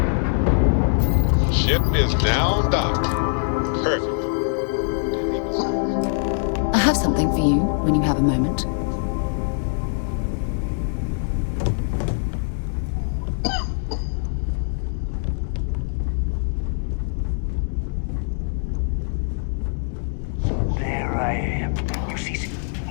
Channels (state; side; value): silent; right; digital silence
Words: Ship is now docked. Perfect. I have something for you when you have a moment. So there I am. You see